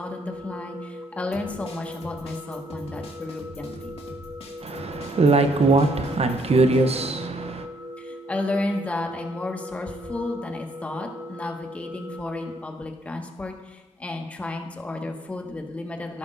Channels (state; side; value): normal; both; correlation 0.69